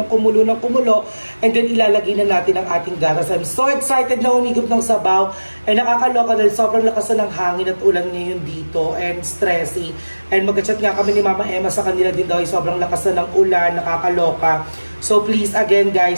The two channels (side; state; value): both; inverted; correlation -1.00